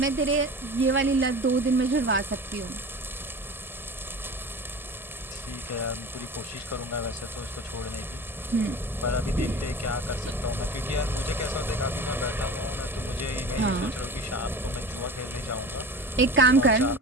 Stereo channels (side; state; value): both; normal; correlation 0.35